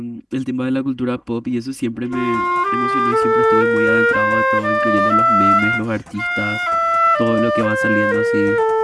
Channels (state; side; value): identical; both; correlation 1.00